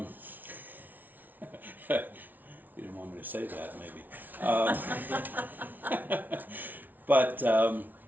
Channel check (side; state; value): left; late; 0.083 ms